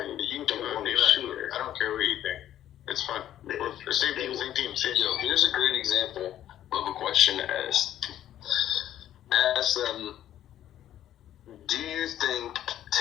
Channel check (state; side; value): quieter; right; 11.8 dB